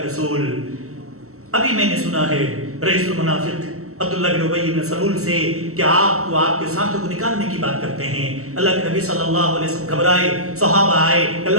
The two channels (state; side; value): late; left; 0.64 ms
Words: رسول ابھی میں نے سنا ہے رئیس المنافق عبداللہ بن ابی بن سلول سے کہ آپ کو آپ کے ساتھوں کو نکالنے کی بات کرتے ہیں۔ اللہ کے نبی صلی اللہ علیہ وسلم گھبرائے، صحابہ آئے،